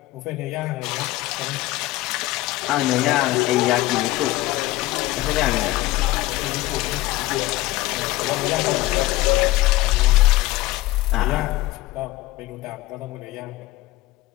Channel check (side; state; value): right; quieter; 18.0 dB